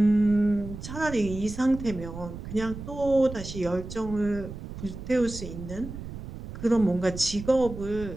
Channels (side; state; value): right; noise; rumble, 10 dB below the sound